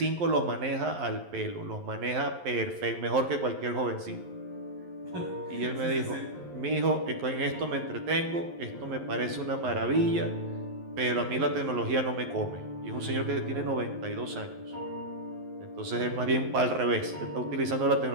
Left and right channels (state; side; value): late; left; 11 ms